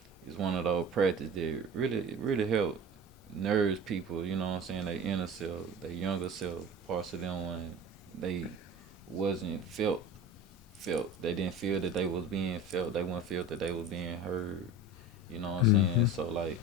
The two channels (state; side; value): normal; both; correlation 0.35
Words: is one of those practices that really help nourish people, you know what I'm saying, their inner self, their younger self, parts of them when they wasn't felt. They didn't feel that they was being felt. They wouldn't feel that they was being heard. You know what I'm saying? Hmm. So like